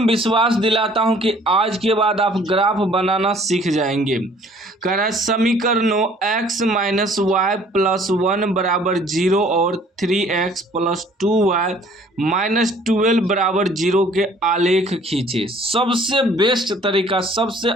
विश्वास दिलाता हूं कि आज के बाद आप ग्राफ बनाना सीख जाएंगे। कह रहा है समीकरणों x माइनस वाई प्लस 1 बराबर 0 और 3x प्लस 2y माइनस 12 बराबर 0 के आलेख खींचे। सबसे बेस्ट तरीका, सबसे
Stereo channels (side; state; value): both; normal; correlation 0.56